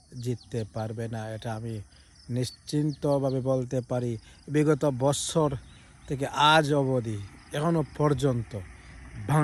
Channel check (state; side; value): identical; both; correlation 1.00